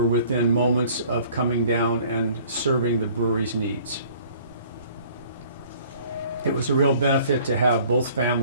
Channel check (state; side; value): inverted; both; correlation -0.54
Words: within moments of coming down and serving the brewery's needs. It was a real benefit to have both